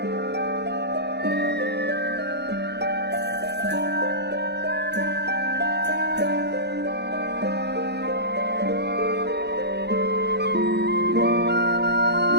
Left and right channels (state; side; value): late; left; 0.49 ms